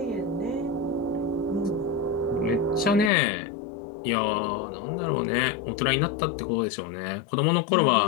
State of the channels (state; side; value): drops out; right; at 3.1 s